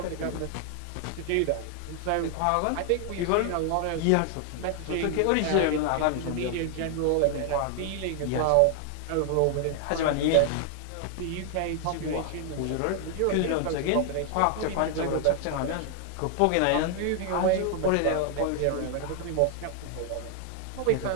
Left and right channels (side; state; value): both; different; correlation 0.00